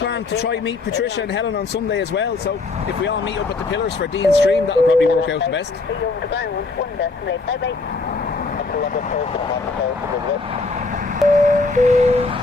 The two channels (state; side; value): quieter; right; 3.8 dB